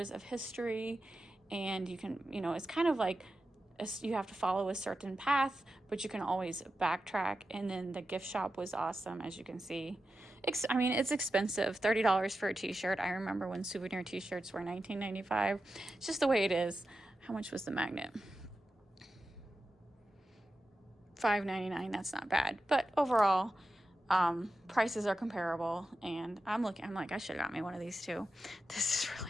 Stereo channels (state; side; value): normal; both; correlation 0.91